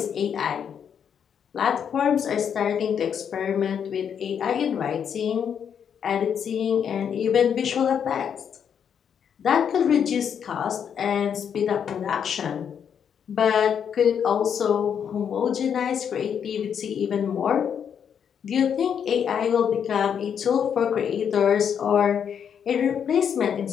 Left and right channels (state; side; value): quieter; right; 7.9 dB